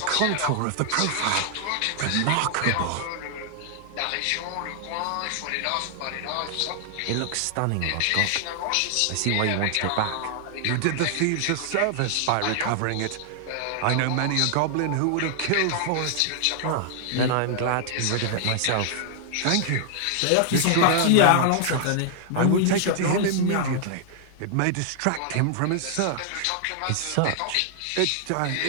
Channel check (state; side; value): different; both; correlation -0.01